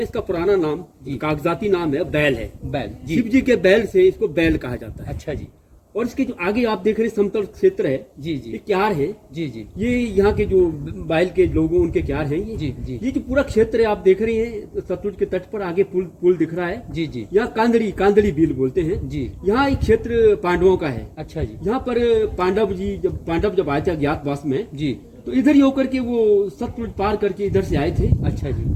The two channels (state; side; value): identical; both; correlation 1.00